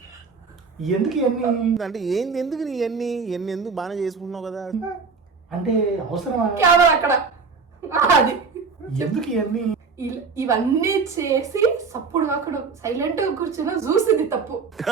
ఎందుకు ఇవన్నీ అంటే ఏంది, ఎందుకు నీ ఎన్ని ఎందుకు బాగానే చేసుకుంటున్నావు కదా? అంటే అవసరమా? కెమెరా అక్కడ. అది ఎందుకు ఇవన్నీ? ఇవన్నీ చేసి సప్పుడు అక్కడ సైలెంట్ గా కూర్చుని చూసింది తప్పు.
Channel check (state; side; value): quieter; left; 4.9 dB